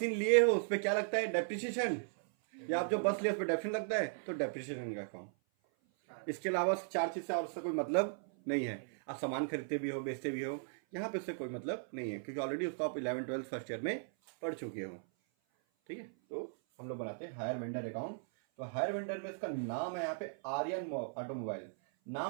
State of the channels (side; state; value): left; silent; 53 dB below the other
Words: लिए हो उस पर क्या लगता है? डेप्रिसिएशन। या आप जो बस लिए उस पर डेप्रिसिएशन लगता है, तो डेप्रिसिएशन का अकाउंट। इसके अलावा 4 चीज से और उससे कोई मतलब नहीं है। आप सामान खरीदते भी हो, बेचते भी हो, यहाँ पे उससे कोई मतलब नहीं है, क्योंकि ऑलरेडी उसको आप 11-12 फर्स्ट ईयर में पढ़ चुके हो। ठीक है, तो हम लोग बनाते हैं हायर वेंडर अकाउंट। तो हायर वेंडर में इसका नाम है यहाँ पे आर्यन ऑटोमोबाइल।